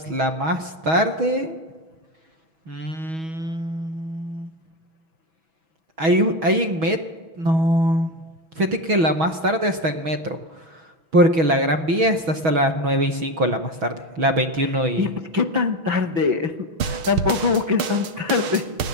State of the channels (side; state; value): left; late; 6.5 ms